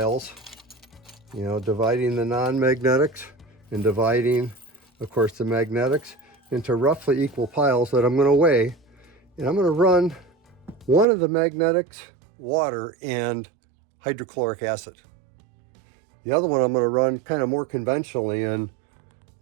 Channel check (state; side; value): drops out; left; at 11.1 s